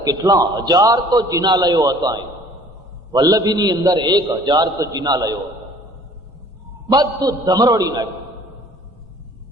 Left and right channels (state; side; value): normal; both; correlation 0.53